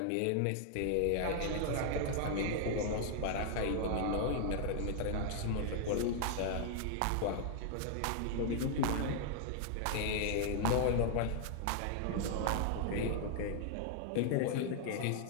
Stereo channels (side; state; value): both; different; correlation 0.00